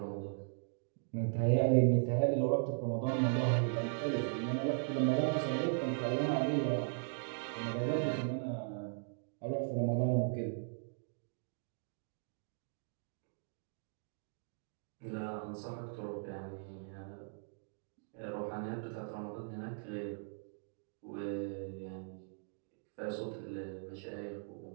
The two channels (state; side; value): silent; left; digital silence